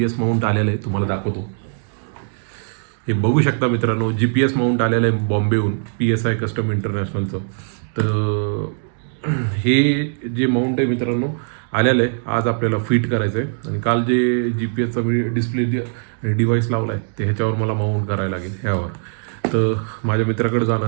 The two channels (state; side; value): silent; left; digital silence